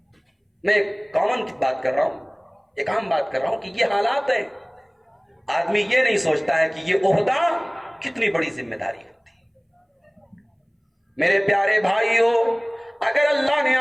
میں ایک کامن بات کر رہا ہوں، ایک عام بات کر رہا ہوں کہ یہ حالات ہیں۔ آدمی یہ نہیں سوچتا ہے کہ یہ عہدہ کتنی بڑی ذمہ داری ہوتی ہے۔ میرے پیارے بھائیو، اگر اللہ نے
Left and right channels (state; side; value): identical; both; correlation 1.00